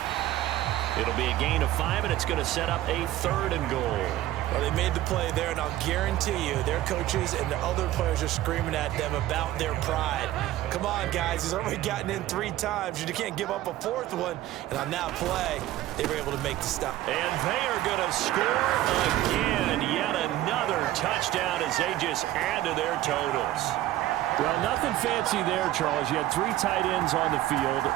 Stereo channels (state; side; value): quieter; left; 14.6 dB